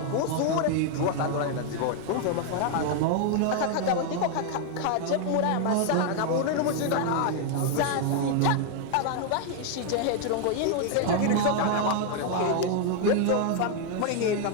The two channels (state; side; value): different; both; correlation 0.00